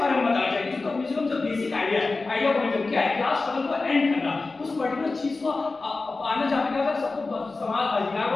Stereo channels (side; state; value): right; quieter; 3.7 dB